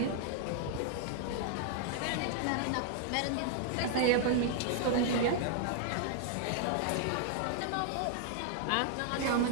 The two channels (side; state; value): both; different; correlation -0.01